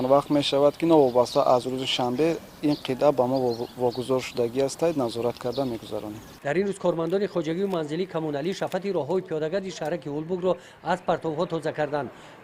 وقت می شود که نوابسته از روز شنبه این قطعه با ما واگذار شدگی است نظارت کرده میگذرانیم. در این روز کارمندان خواجگی و منزلی کمونالی شفت راههای پیاده‌گرد شهرک اولبوگ را از پرتوها تازه کردند.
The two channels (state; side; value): identical; both; correlation 1.00